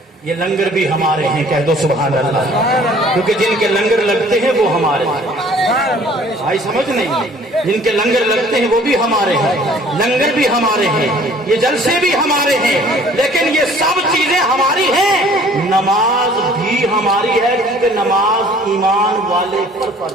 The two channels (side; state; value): both; normal; correlation 0.53